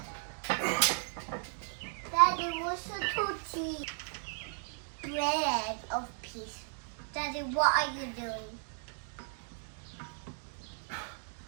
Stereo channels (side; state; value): left; silent; 54 dB below the other